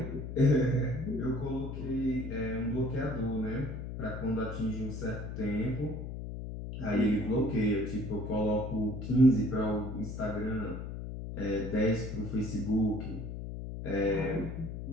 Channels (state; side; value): noise; left; hum, 7 dB below the sound